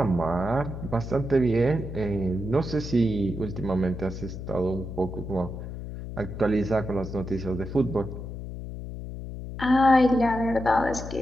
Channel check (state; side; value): noise; left; hum, 8 dB below the sound